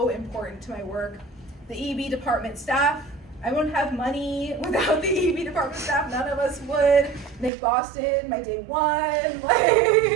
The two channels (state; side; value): drops out; left; at 7.5 s